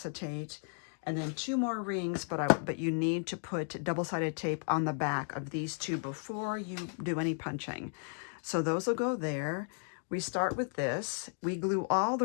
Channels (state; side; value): silent; right; 55 dB below the other